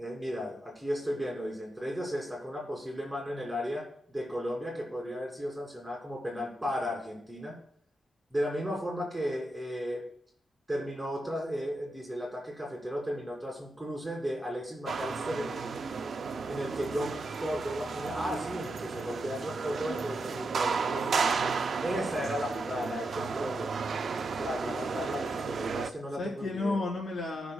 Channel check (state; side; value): normal; both; correlation 0.86